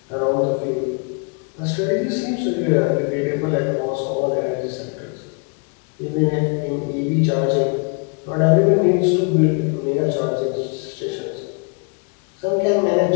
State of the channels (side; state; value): right; quieter; 36.8 dB